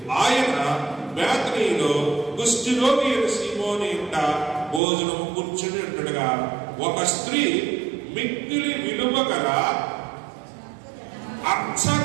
ఆయన బేతనీలో కుష్ఠరోగి అయిన సీమోని ఇంట భోజనము కూర్చుని ఉండగా ఒక స్త్రీ మిక్కిలి విలువ గల అచ్చ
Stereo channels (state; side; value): drops out; left; at 4.8 s